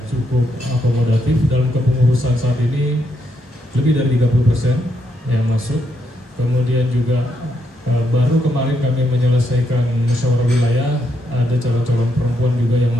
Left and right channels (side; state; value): both; normal; correlation 0.78